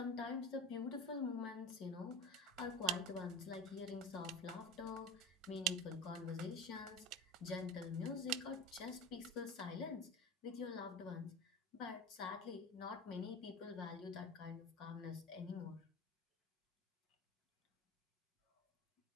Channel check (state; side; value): normal; both; correlation 0.31